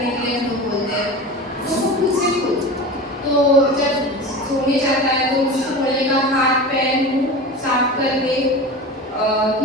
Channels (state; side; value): normal; both; correlation 0.31